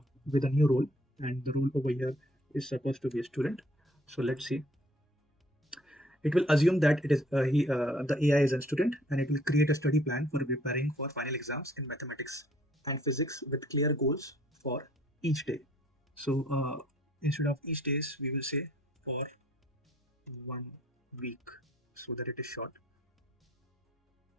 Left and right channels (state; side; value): normal; both; correlation 0.61